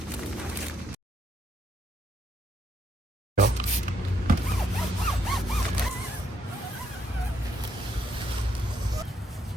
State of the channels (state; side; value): normal; both; correlation 0.72